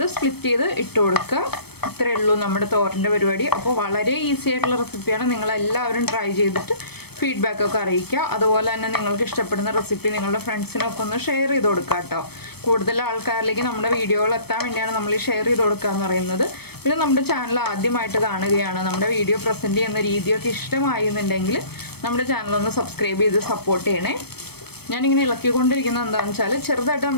സ്പ്ലിറ്റ് ചെയ്ത് ഇട്ട് കൊടുക്കുക. ഇത്രയേ ഉള്ളൂ നമ്മുടെ തോരൻ്റെ പരിപാടി. അപ്പോൾ വളരെ ഈസി ആയിട്ടുള്ള റെസിപ്പിയാണ്. നിങ്ങളെല്ലാവരും ട്രൈ ചെയ്തിട്ട് ഫീഡ്ബാക്കൊക്കെ അറിയിക്കുക. അതുപോലെ തന്നെ നിങ്ങൾക്ക് ഇഷ്ടപ്പെടുന്ന റെസിപ്പി നിങ്ങളുടെ ഫ്രണ്ട്സിനൊക്കെ ഒന്ന് ഷെയർ ചെയ്ത് കൊടുക്കുക കേട്ടോ. കൂടുതൽ ആൾക്കാരിലേക്ക് നമ്മുടെ വീഡിയോകൾ എത്താൻ വേണ്ടിയാണ് നമ്മൾ ഈ ഷെയർ ചെയ്ത് കൊടുക്കുക എന്ന് പറയുന്നത്. പിന്നെ നമ്മുടെ ചാനൽ ആദ്യമായിട്ട് കാണുകയാണ്, നമ്മുടെ വീഡിയോ പ്രസൻറ്റ് ചെയ്യുന്ന രീതിയൊക്കെ ഇഷ്ടമായിരുന്നുണ്ടെങ്കിൽ നമ്മുടെ ചാനലൊന്ന് സബ്സ്ക്രൈബ് ചെയ്ത് സപ്പോർട്ട് ചെയ്യണേ. ഞാനിങ്ങനെ ഇളക്കിക്കൊണ്ടിരിക്കുന്നത് എന്താണെന്ന് വെച്ചാൽ ചെറുതായിട്ട്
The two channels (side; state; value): right; late; 0.97 ms